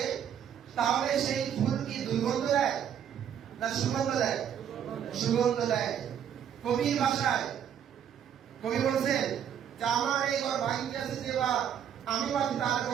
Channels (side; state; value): left; quieter; 9.0 dB